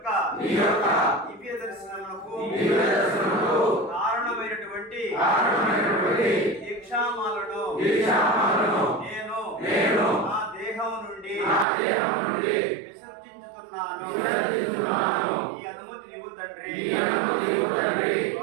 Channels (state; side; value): drops out; left; at 11.7 s